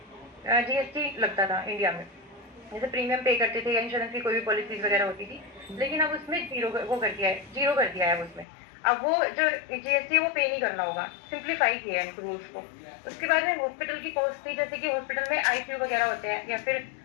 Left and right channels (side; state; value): right; drops out; at 8.5 s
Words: जीएसटी लगता था इंडिया में, जैसे प्रीमियम पे करते थे या इंश्योरेंस की कोई भी पॉलिसीज वगैरह होती थी, लेकिन अब उसमें जीरो कर दिया है उसमें। अब वो जो जीएसटी है वो पे नहीं करना होगा, सिंप्लीफाई किया है रूल्स को। उसके बाद में हॉस्पिटल की कॉस्ट थी, जैसे कि हॉस्पिटल में आईसीयू वगैरह होते हैं या फिर